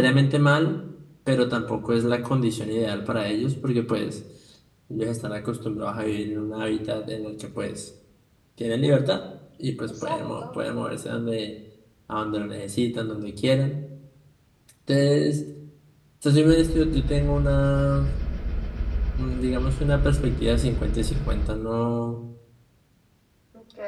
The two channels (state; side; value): identical; both; correlation 1.00